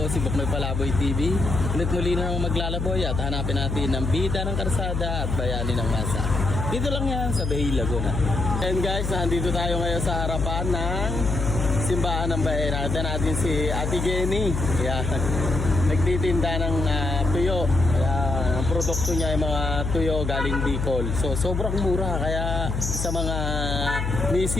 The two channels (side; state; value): left; noise; hum, 2 dB below the sound